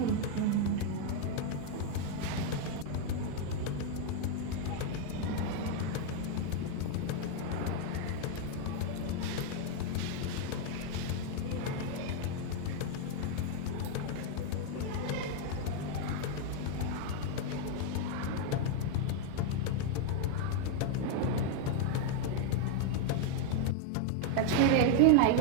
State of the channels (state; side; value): different; both; correlation 0.01